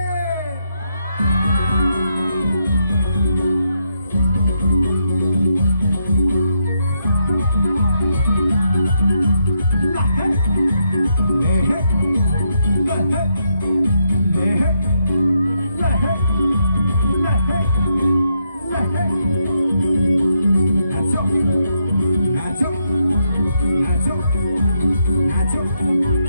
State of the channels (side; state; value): both; inverted; correlation -0.79